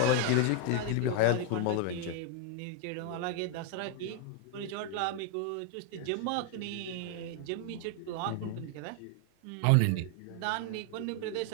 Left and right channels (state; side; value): different; both; correlation 0.00